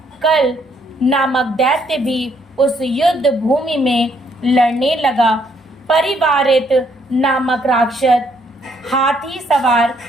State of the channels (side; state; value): both; normal; correlation 0.70